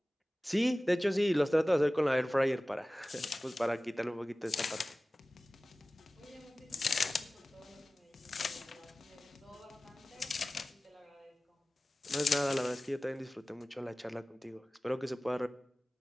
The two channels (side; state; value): both; normal; correlation 0.97